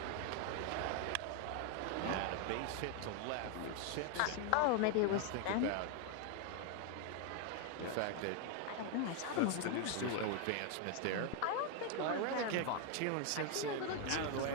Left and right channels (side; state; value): both; different; correlation 0.01